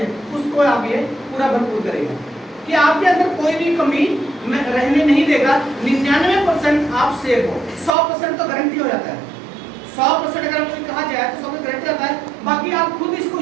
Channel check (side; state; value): left; drops out; at 7.9 s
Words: है, उसको आप ये पूरा भरपूर करेगा कि आपके अंदर कोई भी कमी रहने नहीं देगा। 99% आप सेफ हो, 100% तो गारंटी हो जाता है। 100% अगर कोई कहा जाए तो 100% गारंटी होता है। बाकी आप खुद इसको